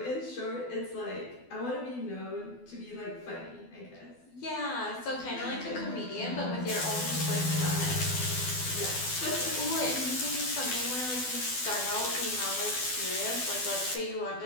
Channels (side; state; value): right; late; 12 ms